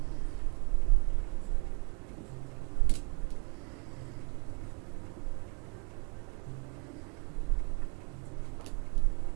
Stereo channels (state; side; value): quieter; left; 33.2 dB